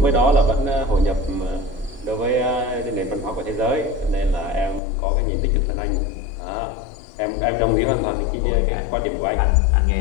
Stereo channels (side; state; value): right; drops out; at 4.8 s